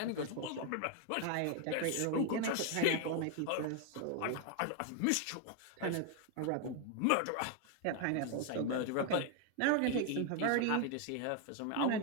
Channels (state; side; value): different; both; correlation 0.01